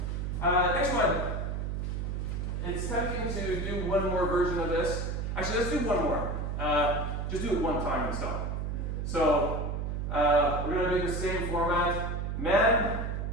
next one. It's tempting to do one more version of this. Actually, let's do one more. Just do it one time and stop. So we're going to do the same format. Men,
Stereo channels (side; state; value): right; noise; hum, 2 dB below the sound